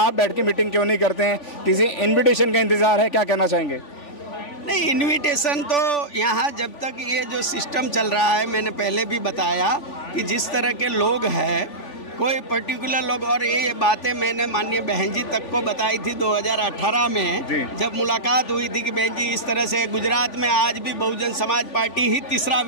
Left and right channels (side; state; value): right; late; 3.5 ms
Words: बैठ के मीटिंग क्यों नहीं करते हैं? किसी इन्विटेशन का इंतजार है? क्या कहना चाहेंगे? नहीं, इन्विटेशन तो यहाँ जब तक ये जो सिस्टम चल रहा है, मैंने पहले भी बताया कि जिस तरह के लोग हैं, कोई पर्टिकुलर लोग, और ये बातें मैंने माननीय बहन जी तक को बताई थी 2018 में, जब मुलाकात हुई थी कि बहन जी इस तरह से गुजरात में आज भी बहुजन समाज पार्टी ही तीसरा